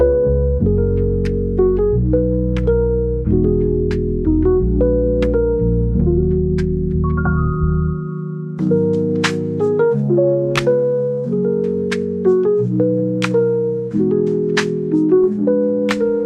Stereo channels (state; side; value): identical; both; correlation 1.00